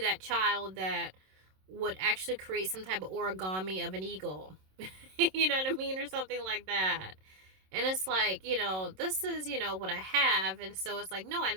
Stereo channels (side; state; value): left; late; 27 ms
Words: child that would actually create some type of origami of an eagle. You know what I mean? Or something like that. And it's like, you know, this is, you know, what I have. And so it's like, no, I